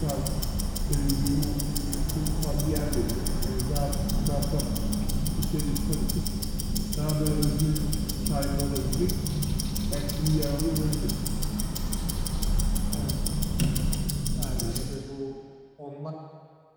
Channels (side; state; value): both; identical; correlation 1.00